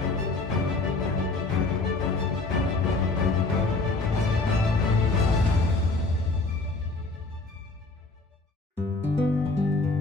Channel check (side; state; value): right; quieter; 3.4 dB